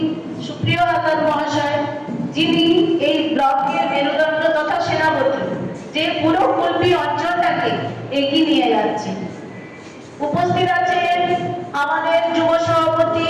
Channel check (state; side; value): identical; both; correlation 1.00